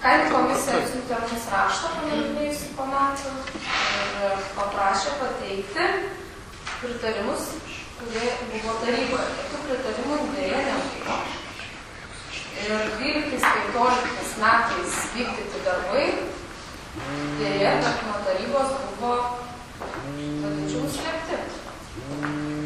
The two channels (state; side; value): identical; both; correlation 1.00